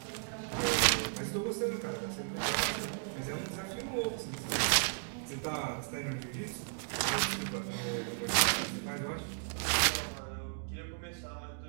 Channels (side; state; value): left; silent; digital silence